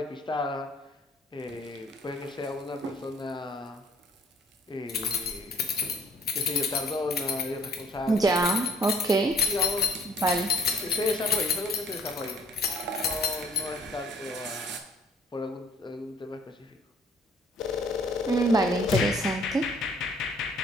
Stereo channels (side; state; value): both; normal; correlation 0.58